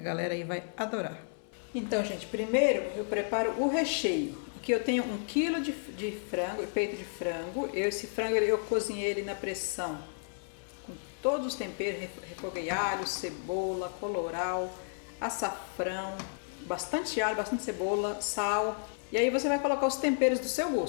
aí vai adorar. Então, gente, primeiro eu preparo o recheio. Aqui eu tenho 1 kg de frango, peito de frango. Esse frango eu cozinhei ele na pressão com todos os temperos, refoguei alho, cebola, colorau, açafrão, bastante alho, bastante cebola, sal. E aí você vai colocar os temperos do seu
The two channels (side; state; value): right; silent; 56 dB below the other